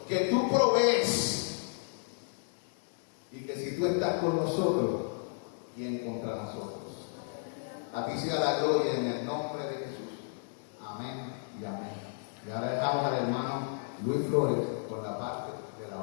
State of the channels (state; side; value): silent; right; 56 dB below the other